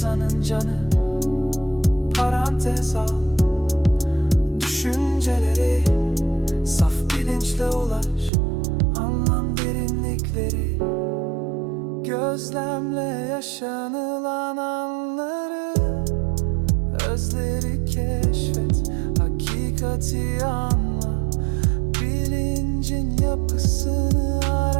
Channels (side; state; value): left; drops out; at 8.3 s